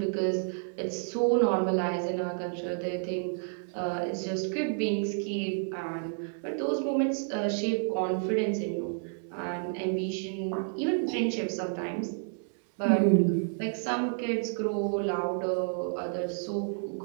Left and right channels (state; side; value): silent; left; digital silence